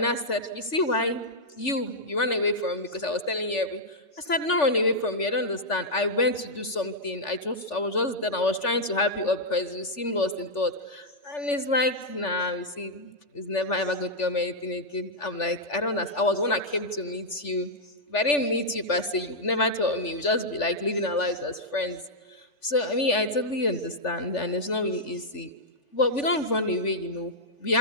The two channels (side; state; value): right; late; 3.4 ms